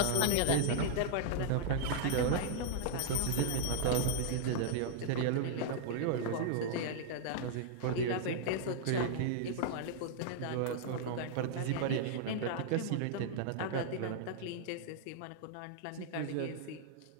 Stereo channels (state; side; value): different; both; correlation -0.01